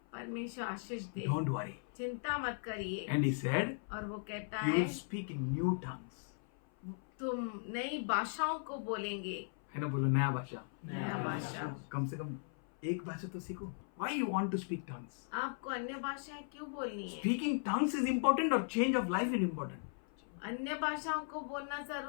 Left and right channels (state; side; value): silent; right; 53 dB below the other